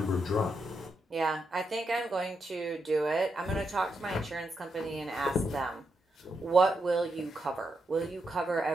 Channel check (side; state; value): both; normal; correlation 0.83